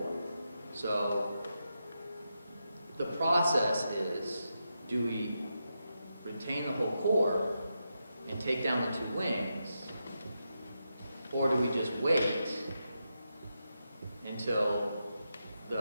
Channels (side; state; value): both; inverted; correlation -0.86